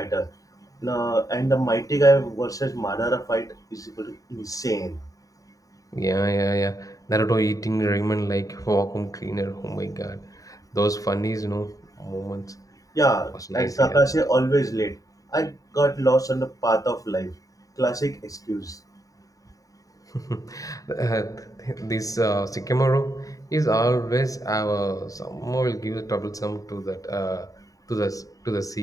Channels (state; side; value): late; right; 0.17 ms